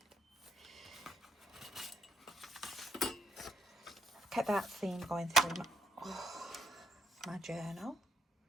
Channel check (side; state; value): both; normal; correlation 0.71